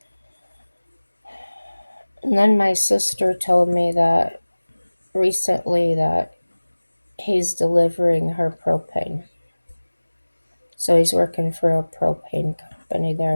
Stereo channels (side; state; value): both; inverted; correlation -1.00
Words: and then my sister told me that recently that he's delivering her propane. So he's working for a propane company